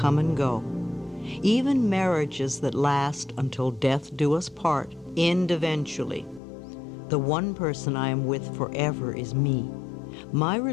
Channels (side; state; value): right; drops out; at 6.4 s